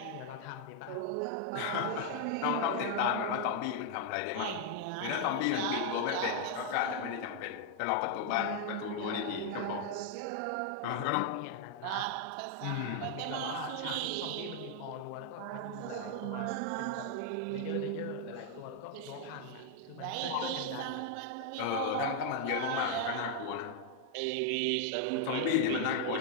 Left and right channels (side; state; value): both; different; correlation 0.00